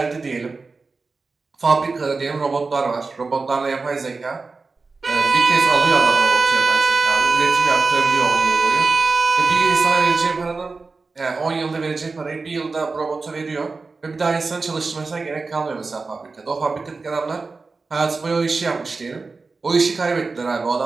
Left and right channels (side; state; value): left; quieter; 4.1 dB